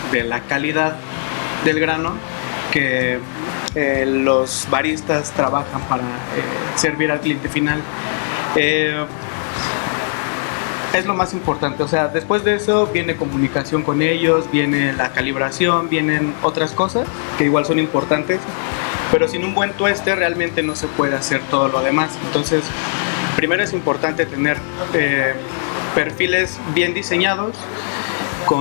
la calidad del grano que los baristas trabajan para servir al cliente final. Es lo más importante, o sea, después de eso viene comunicación con ellos, viene la calibración, vienen otras cosas que igual son importantes, pero sin un buen tueste realmente no se puede hacer todo lo demás. Entonces, primero es importante tener perfiles bien diseñados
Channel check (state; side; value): silent; right; digital silence